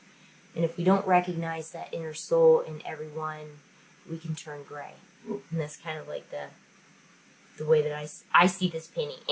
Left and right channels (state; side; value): identical; both; correlation 1.00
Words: And if we don't recognize that inner soul in everyone, we can turn gray. And that's kind of like the way that I see this painting.